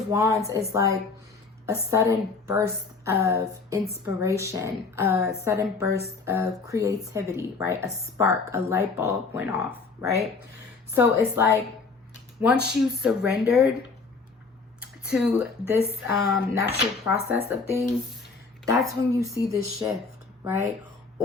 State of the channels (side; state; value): right; quieter; 4.4 dB